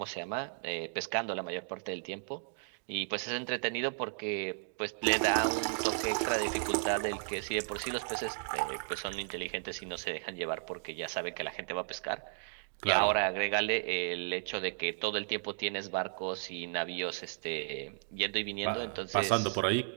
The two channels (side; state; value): left; silent; digital silence